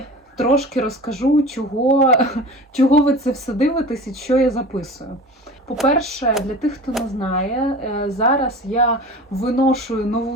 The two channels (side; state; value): both; normal; correlation 0.36